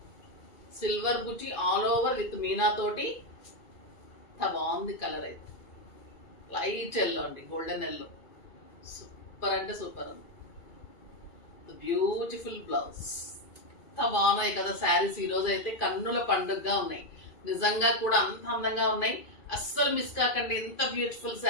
Silver buti all over with Meena తోటి. బాగుంది కలర్ అయితే. లైట్ ఎల్లో అండి, గోల్డెన్ ఎల్లో. సూపర్ అంటే సూపర్ ఉంది. Beautiful blouse. ఎంత బాగున్నాయి కదా శారీస్. ఈ రోజు అయితే కన్నుల పండుగగా ఉన్నాయి. నిజంగా కూడా అంత అందంగా ఉన్నాయి. అస్సలు మిస్ కాకండి. ఎంత బ్యూటిఫుల్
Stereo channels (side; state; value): right; late; 2.4 ms